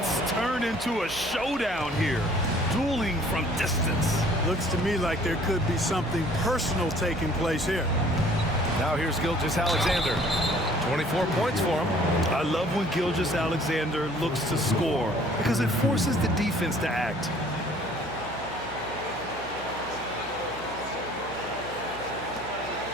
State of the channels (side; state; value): right; noise; hum, 16 dB below the sound